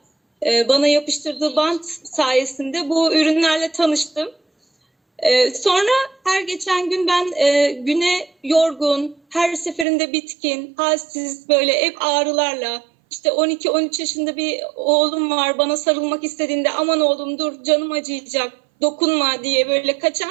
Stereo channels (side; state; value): left; drops out; at 9.9 s